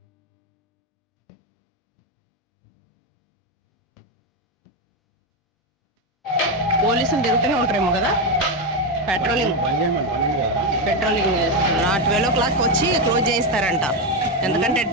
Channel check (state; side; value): normal; both; correlation 0.09